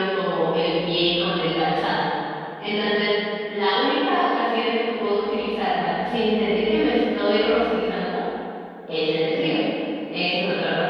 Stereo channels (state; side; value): identical; both; correlation 1.00